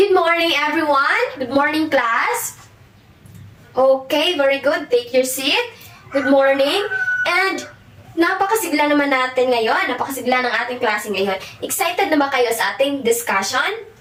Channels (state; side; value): identical; both; correlation 1.00